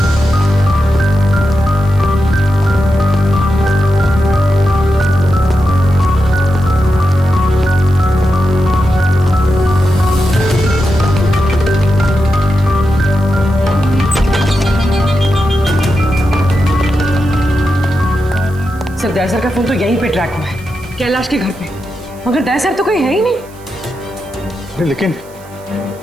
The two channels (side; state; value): right; noise; hiss, 25 dB below the sound